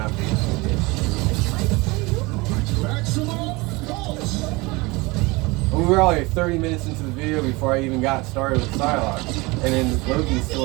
this. We were already 30 minutes into the video before I even got started with Psylocke. And then Loki's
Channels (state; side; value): quieter; left; 24.1 dB